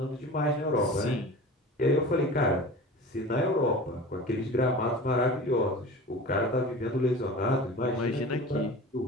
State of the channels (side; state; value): both; normal; correlation 0.37